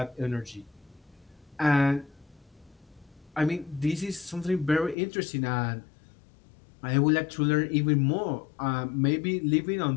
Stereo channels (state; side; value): drops out; right; at 5.0 s